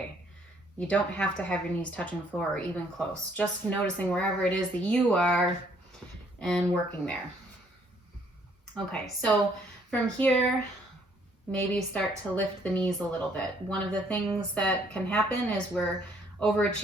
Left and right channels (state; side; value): normal; both; correlation 0.65